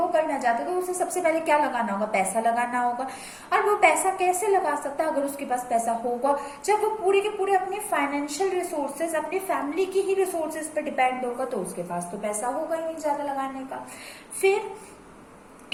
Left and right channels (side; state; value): both; identical; correlation 1.00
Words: करना चाहता है तो उसे सबसे पहले क्या लगाना होगा? पैसा लगाना होगा। और वो पैसा कैसे लगा सकता है? अगर उसके पास पैसा होगा, जब वो पूरी के पूरे अपने फाइनेंशियल रिसोर्सेज अपनी फैमिली की ही रिसोर्सेज पर डिपेंड होगा, तो उसके पास तो पैसा होगा ही नहीं ज्यादा लगाने का। फिर